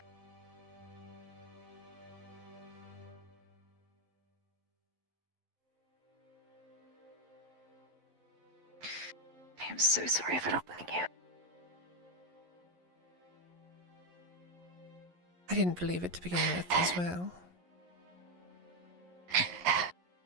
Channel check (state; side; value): late; left; 11 ms